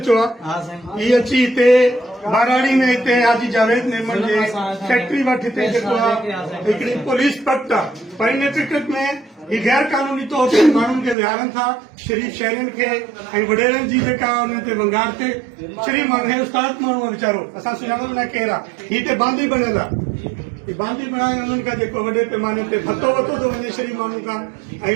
चुआ ये अची हिते बाराड़ी में हिते हाजी जावेद नेमन जे फैक्ट्री वटि हिते जेको आहे हिकिड़ी पुलिस पट आहे पर इन टिकट में ये गैर कानूनी तौर ते माण्हुनि खे विहारनि था शरीफ़ शहरनि खे ऐं वॾेरनि जी जेका उन ते वंगार ते शरीफ़ माण्हू हे उस्ताद माण्हू आहे वीचारो असां सुञाणो न केरु आहे हीअ ते बांदी बणियल आहे बांदी बणाए उन्हनि खां जेको वॾे पैमाने ते भतो वतो थो वञे शरीफ़ माण्हू खां ऐं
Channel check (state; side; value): drops out; left; at 11.2 s